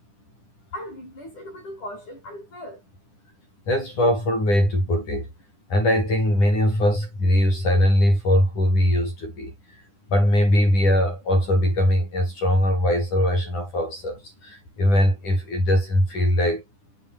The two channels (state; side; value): late; right; 10 ms